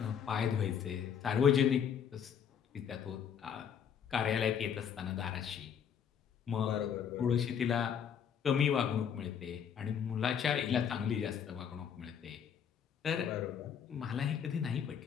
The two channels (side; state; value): right; quieter; 7.9 dB